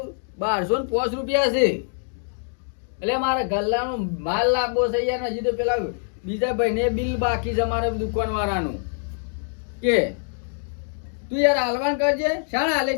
1205 રૂપિયા છે એટલે મારા ગલ્લાનો માલ લાગવો છે યાર હજી તો પેલા બીજા ભાઈને બિલ બાકી છે અમારે દુકાન વાળાનું કે તું યાર હાલવાન કરજે શાણા હાલે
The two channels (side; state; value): right; silent; 62 dB below the other